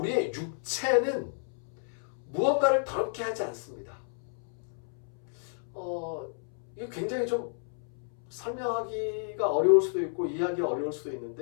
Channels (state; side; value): silent; right; 57 dB below the other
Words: 육체는 무언가를 더럽게 하지 않습니다. 이게 굉장히 좀 설명하기가 어려울 수도 있고 이해하기가 어려울 수도